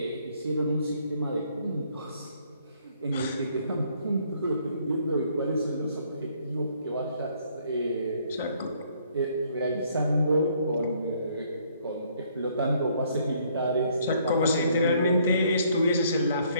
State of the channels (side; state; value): both; inverted; correlation -0.66